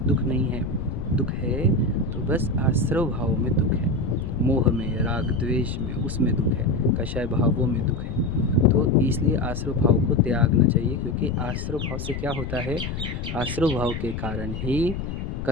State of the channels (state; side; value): noise; left; rumble, 5 dB below the sound